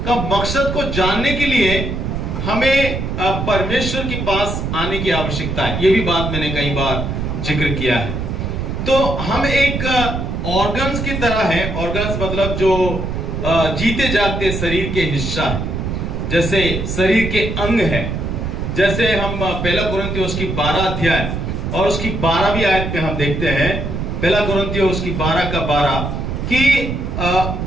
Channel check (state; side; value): noise; right; rumble, 3 dB below the sound